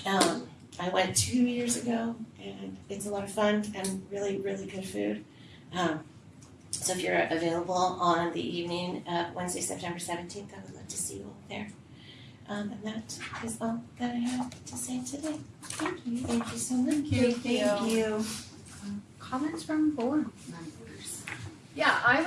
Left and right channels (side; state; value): both; identical; correlation 1.00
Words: I went 2 years ago and it's a lot of fun and really, really good food. So if you're available on the evening of Wednesday, September 17th, I would love to see you all there. And that is all that I have to say today. Thank you. Thank you so much. Thank you. Comments from board members? Yeah, I